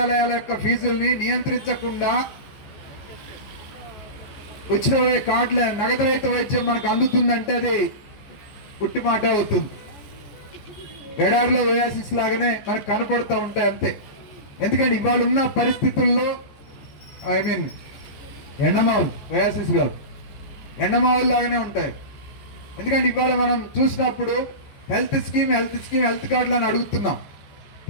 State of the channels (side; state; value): right; late; 14 ms